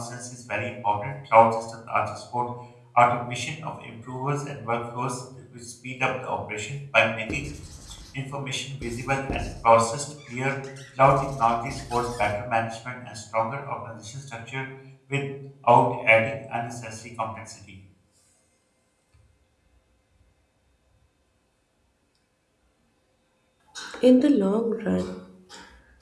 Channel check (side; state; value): both; identical; correlation 1.00